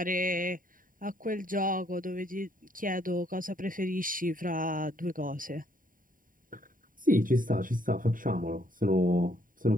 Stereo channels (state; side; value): late; left; 0.40 ms